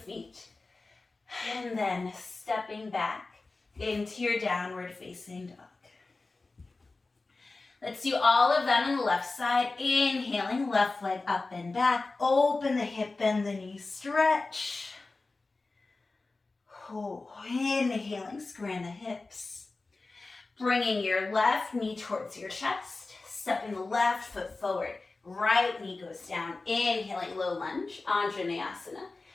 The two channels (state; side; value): quieter; right; 3.5 dB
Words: and then stepping back into your downward facing dog. Let's do all of that on the left side. Inhaling, left leg up and back, open the hip, bend the knee, stretch. Inhaling, squaring the hips. Bringing your left knee towards your chest, stepping the left foot forward, right knee goes down, inhaling low lunge, Anjaneyasana.